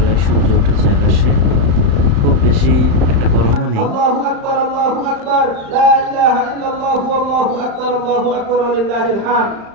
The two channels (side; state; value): left; late; 35 ms